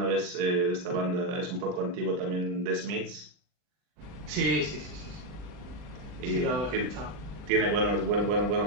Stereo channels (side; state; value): left; late; 39 ms